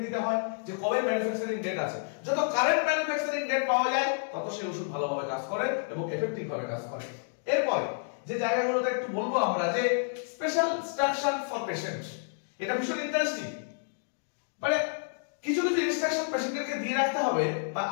নিতে হয় যে কবে ম্যানুফ্যাকচারিং ডেট আছে। যত কারেন্ট ম্যানুফ্যাকচারিং ডেট পাওয়া যায় তত সেই ওষুধ ভালোভাবে কাজ করে এবং এফেক্টিভ ভাবে কাজ করে। এরপরে যে জায়গাগুলোতে একটু বলবো আমরা যে স্পেশাল ইনস্ট্রাকশন ফর পেশেন্ট, এটা ভীষণ ইন্টারেস্টিং। মানে কিছু ইনস্ট্রাকশন পেশেন্টকে দিয়ে রাখতে হবে বা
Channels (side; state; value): right; silent; digital silence